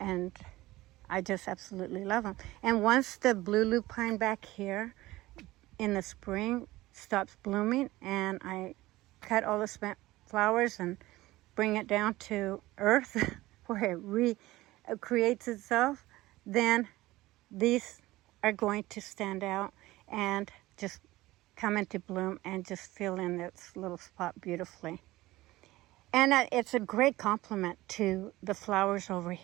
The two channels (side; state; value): left; quieter; 18.1 dB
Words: I just absolutely love them. And once the blue lupine back here in the spring stops blooming and I cut all the spent flowers and bring it down to earth where it recreates itself, then these are going to stand out and just come into bloom and just fill in this little spot beautifully. And it's a great complement to the flowers over